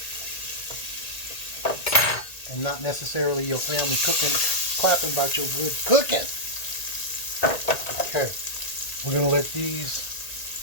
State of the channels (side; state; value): right; late; 1.8 ms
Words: And not necessarily your family cooking, clapping about your good cooking. Okay. We're going to let these